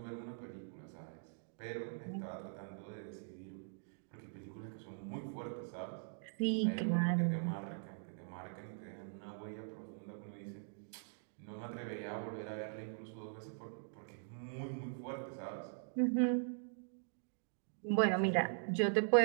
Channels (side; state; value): left; silent; digital silence